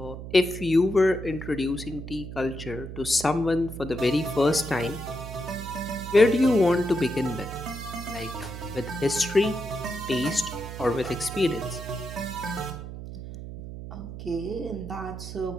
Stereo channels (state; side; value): noise; right; hum, 10 dB below the sound